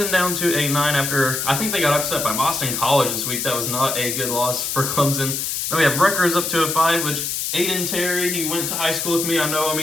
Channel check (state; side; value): noise; left; hiss, 2 dB below the sound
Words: down to a 9 after, I think they got upset by Boston College this week. That was not a good loss for Clemson. Then we have Rutgers up to a 5, which Aiden Terry, he went to high school with me. I know him.